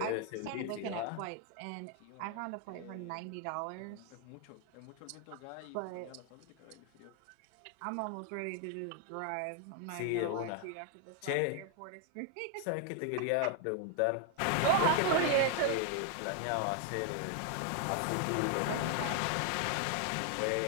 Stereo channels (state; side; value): different; both; correlation 0.00